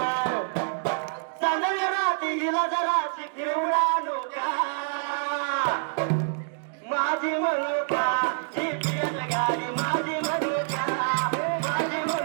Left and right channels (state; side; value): silent; left; digital silence